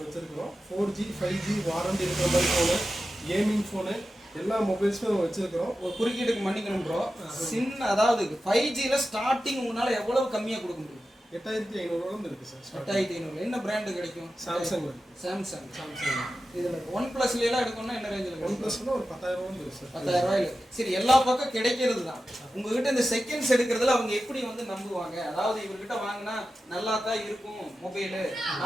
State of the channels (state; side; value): normal; both; correlation 0.92